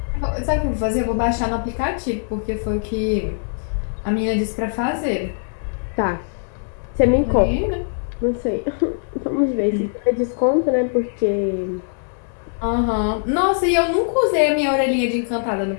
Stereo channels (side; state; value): right; silent; 65 dB below the other